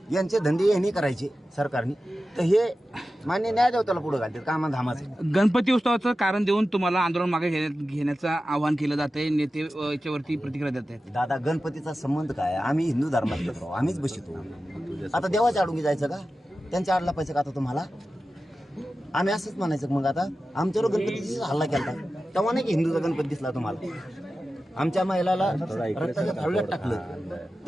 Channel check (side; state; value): both; normal; correlation 0.94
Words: यांचे धंदे यांनी करायचे सरकारने तर हे मान्य न्यायदेवताला पुढे घालतात कामा धामाचं गणपती उत्सवाचं कारण देऊन तुम्हाला आंदोलन मागे घेण्याचं आवाहन केलं जाते नेते याच्यावरती प्रतिक्रिया देत आहेत दादा गणपतीचा संबंध काय आम्ही हिंदू धर्मात येतो आम्हीच बसतो आता देवाच्या आडून जायचं का त्यांच्या आडला पैसे का आता तुम्हाला आम्ही असंच म्हणायचं मग आता आमच्यावर गणपतीचा हल्ला केला तेव्हा नाही की हिंदूचा गणपती दिसला तुम्हाला आमच्या महिलाला रक्ताच्या थाळीत टाकलं